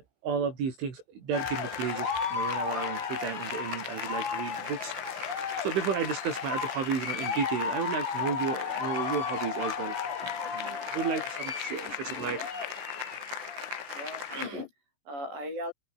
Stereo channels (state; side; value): late; left; 16 ms